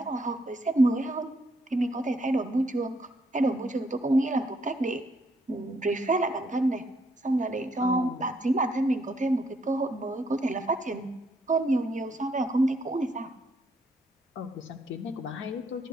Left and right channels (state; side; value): normal; both; correlation 0.73